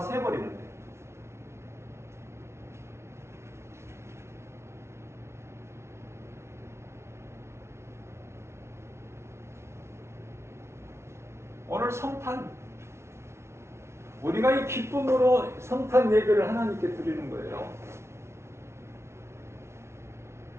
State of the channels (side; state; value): left; late; 0.13 ms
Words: 오늘 성탄, 우리가 이 기쁨으로 성탄 예배를 하나님께 드리는 거예요.